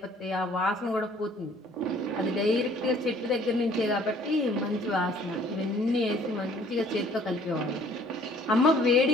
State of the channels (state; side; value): normal; both; correlation 0.56